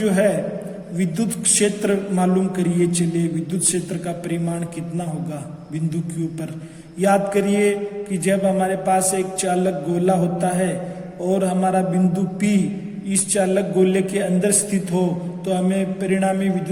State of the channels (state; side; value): identical; both; correlation 1.00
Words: है विद्युत क्षेत्र मालूम करिए। चलिए विद्युत क्षेत्र का परिमाण कितना होगा बिंदु Q पर। याद करिए कि जब हमारे पास एक चालक गोला होता है और हमारा बिंदु P इस चालक गोले के अंदर स्थित हो, तो हमें परिणामी